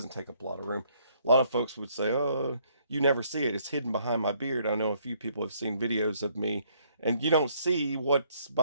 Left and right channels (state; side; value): inverted; both; correlation -0.66